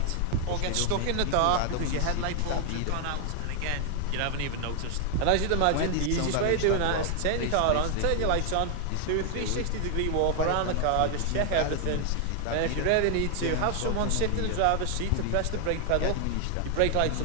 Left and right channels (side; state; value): both; different; correlation 0.00